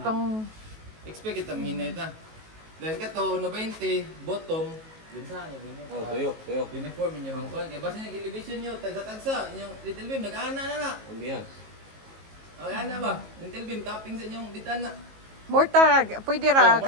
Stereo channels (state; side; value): late; left; 19 ms